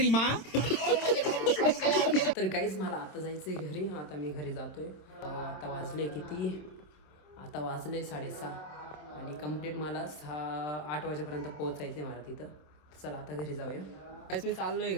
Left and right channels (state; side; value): late; right; 27 ms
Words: माँ. तर गाईज मला आता जायचं आहे घरी. आता मी घरी जातोय. आता वाजले किती, आता वाजले 6:30 आणि कंप्लीट मला 8 वाजेपर्यंत पोहोचायचं आहे मला तिथं. चला आता घरी जाऊया. गाईज मी चाललोय